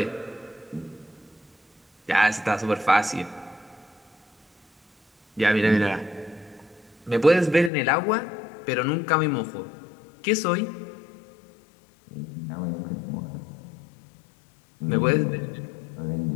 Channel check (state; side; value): drops out; right; at 7.7 s